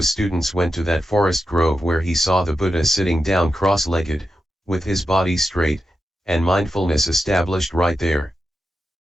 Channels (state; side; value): normal; both; correlation 0.89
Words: students went to that forest grove where he saw the Buddha sitting down cross-legged, with his body straight, and mindfulness established right there.